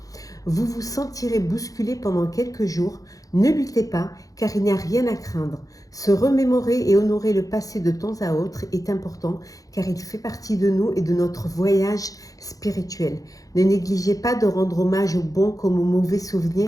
Vous vous sentirez bousculé pendant quelques jours. Ne luttez pas, car il n'y a rien à craindre. Se remémorer et honorer le passé de temps à autre est important, car il fait partie de nous et de notre voyage spirituel. Ne négligez pas de rendre hommage aux bons comme aux mauvais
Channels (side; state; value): right; late; 0.17 ms